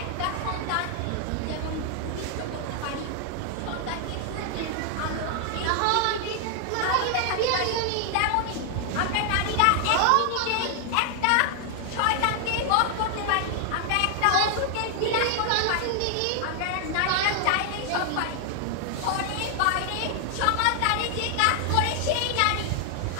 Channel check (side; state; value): both; different; correlation 0.00